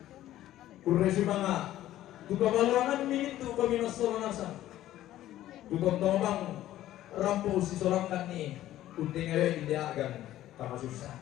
kuresi manga tukabalangan mintu komi nasolanasa tukontomang rambo usi solangkan ni untingayo inde agan kama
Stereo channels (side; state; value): right; quieter; 13.7 dB